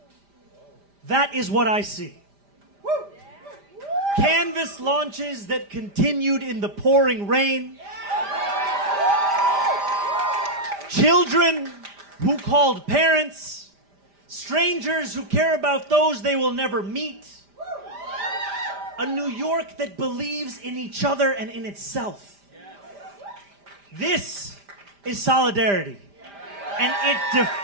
that is what I see. Canvas launches that continued in the pouring rain. Children who called parents. Strangers who care about those they will never meet. A New York that believes in each other and in itself. This is solidarity. And it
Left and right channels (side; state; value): left; late; 5.0 ms